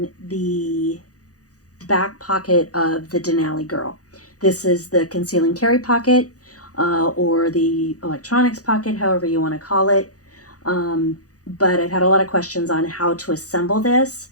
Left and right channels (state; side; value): late; right; 0.67 ms